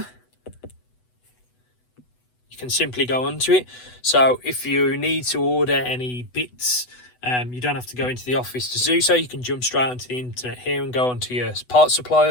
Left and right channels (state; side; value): late; right; 8.1 ms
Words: you can simply go onto it. So if you need to order any bits, you don't have to go into the office to do so. You can jump straight onto the internet here and go onto your parts